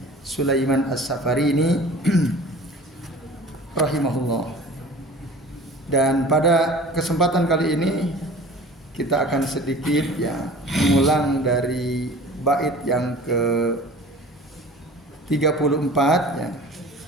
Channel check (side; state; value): both; normal; correlation 0.42